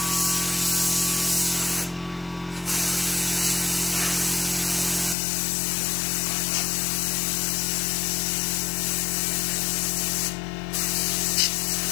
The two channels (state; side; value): drops out; right; at 5.2 s